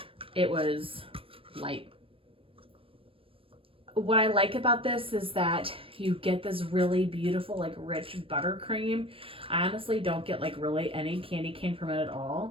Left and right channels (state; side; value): late; left; 0.26 ms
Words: it was light. What I like about this is that you get this really beautiful, like rich buttercream. I honestly don't get like really any candy cane from it at